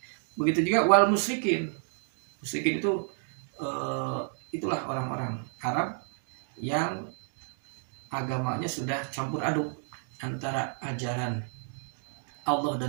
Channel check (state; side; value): silent; left; 56 dB below the other